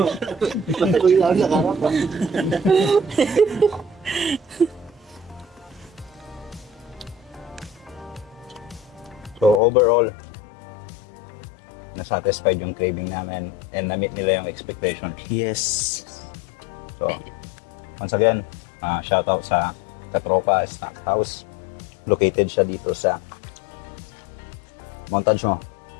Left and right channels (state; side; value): drops out; right; at 9.6 s